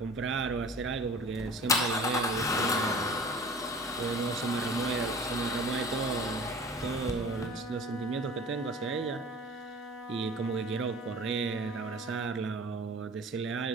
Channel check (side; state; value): both; normal; correlation 0.42